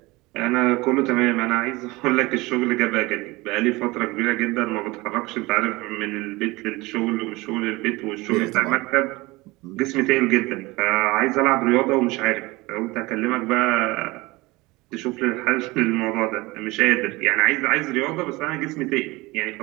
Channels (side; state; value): left; quieter; 22.0 dB